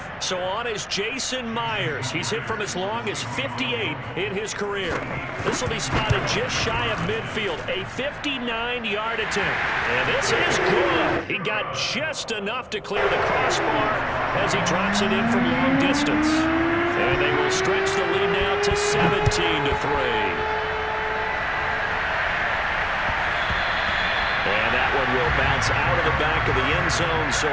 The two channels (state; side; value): identical; both; correlation 1.00